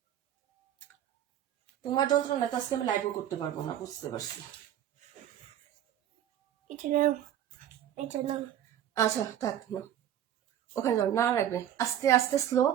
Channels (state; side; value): quieter; left; 11.0 dB